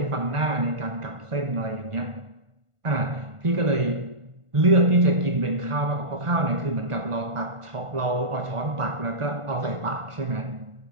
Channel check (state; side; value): late; left; 1.5 ms